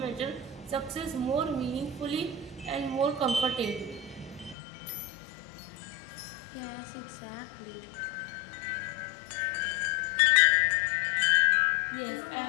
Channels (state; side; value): drops out; right; at 4.5 s